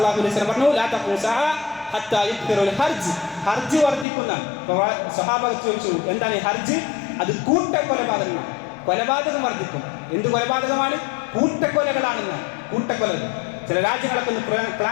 അലൈഹി വസല്ലം പറഞ്ഞു, ലാ തഖൂമു സഅ ഹത്താ യുക്തിറുൽ ഹർജ്. ഹർജ് വർദ്ധിക്കുന്ന. സ്വഹാബകൾ ചോദിച്ചു, എന്താണ് ഈ ഹർജ്? അത് കൂട്ടക്കൊലപാതകമാണ്. കൊലപാതകം വർദ്ധിക്കും. എന്ത് കൊലപാതകമാണ്? കൂട്ടക്കൊലകളാണെന്ന്. കൂട്ടക്കൊലകൾ ചില രാജ്യങ്ങളൊക്കെ ഒന്ന്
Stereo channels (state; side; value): drops out; right; at 4.0 s